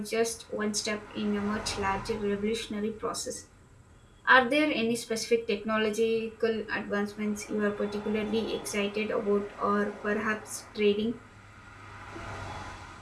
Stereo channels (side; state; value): both; identical; correlation 1.00